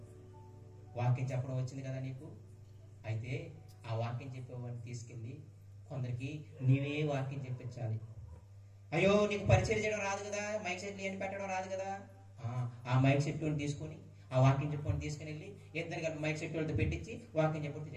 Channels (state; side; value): identical; both; correlation 1.00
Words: వాక్యం చెప్పడం వచ్చింది కదా నీకు, అయితే ఆ వాక్యం చెప్పేవాడిని తీసుకెళ్ళి కొందరికి నీవే వాక్యం చెప్పించాలి. అయ్యో, నీకు పరిచయం చేయడం రాదు కదా, మైక్ సెట్లు అని పెట్టడం రాదు కదా, ఆ మైక్ సెట్ తీసుకొని ఆ వాక్యం చెప్పుకొని తీసుకుని వెళ్ళి ఇద్దరు కలిపి మైక్ సెట్ వాళ్ళతో పెట్టించి వాక్యం చెప్పుకుంటూ